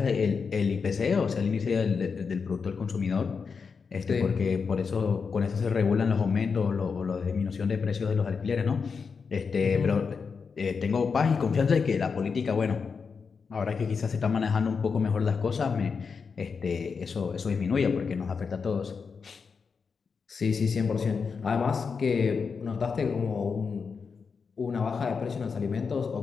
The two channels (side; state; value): right; quieter; 5.5 dB